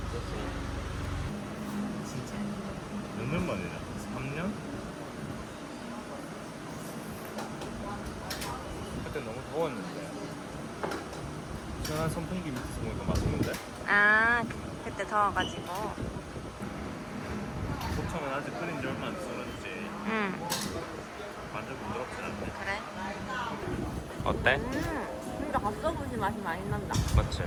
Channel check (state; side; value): identical; both; correlation 1.00